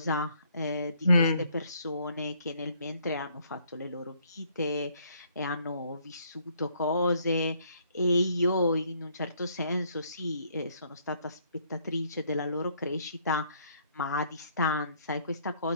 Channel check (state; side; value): inverted; both; correlation -0.66